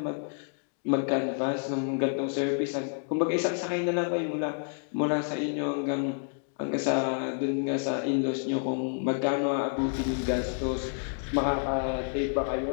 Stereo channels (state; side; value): silent; right; 58 dB below the other